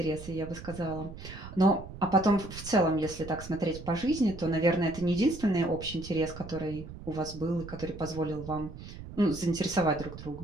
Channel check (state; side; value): noise; right; rumble, 13 dB below the sound